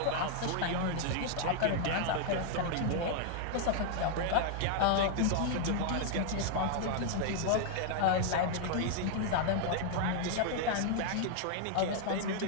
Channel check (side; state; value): both; different; correlation -0.01